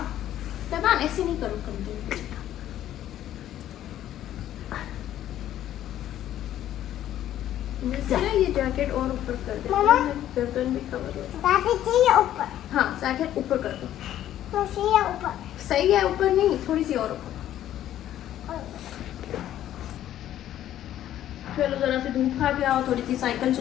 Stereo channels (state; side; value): quieter; right; 12.1 dB